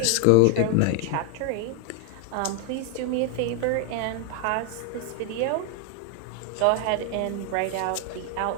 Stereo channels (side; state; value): both; different; correlation 0.00